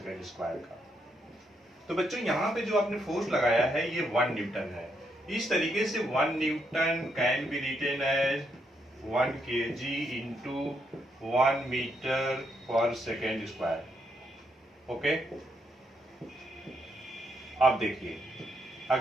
स्क्वायर का। तो बच्चों यहाँ पे जो आपने फोर्स लगाया है ये 1 न्यूटन है। इस तरीके से 1 newton can be written as 1 kg into 1 metre per second square. Okay, अब देखिए,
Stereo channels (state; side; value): normal; both; correlation 0.78